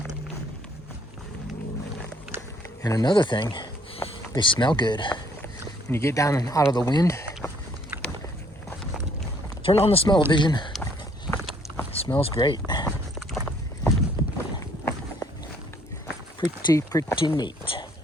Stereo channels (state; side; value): normal; both; correlation 0.64